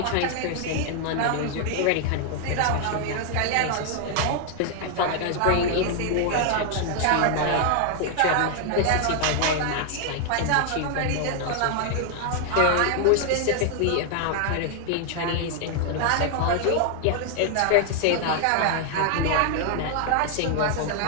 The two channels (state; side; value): different; both; correlation 0.00